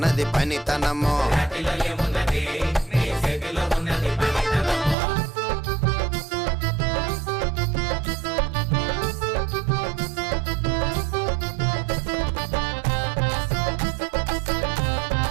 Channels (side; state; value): left; drops out; at 5.0 s